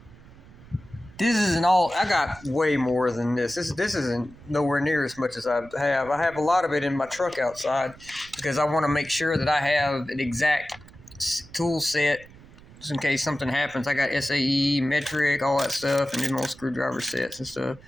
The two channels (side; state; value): right; noise; rumble, 21 dB below the sound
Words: this isn't all. I got way more than this. This isn't nowhere near as much as I have. I have a lot of it in my truck outside because I want to make sure that I have an exact tool set just in case something happens. I got SAE, metric, all that stuff, and then more screwdriver sets and stuff.